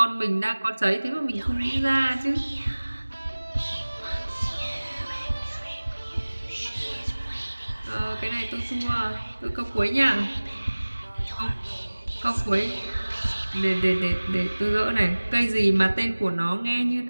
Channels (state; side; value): inverted; both; correlation -1.00